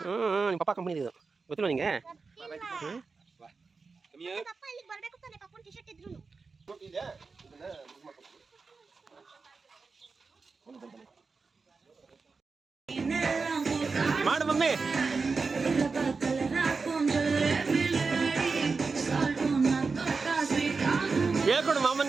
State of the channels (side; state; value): left; quieter; 4.5 dB